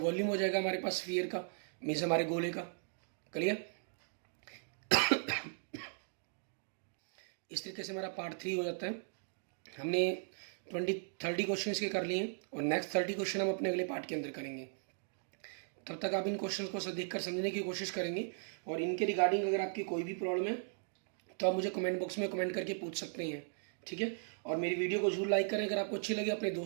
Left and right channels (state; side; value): silent; left; digital silence